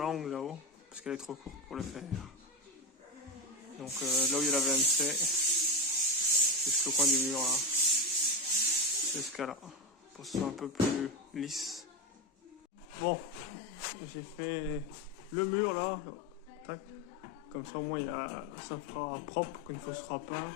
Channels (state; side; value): normal; both; correlation 0.14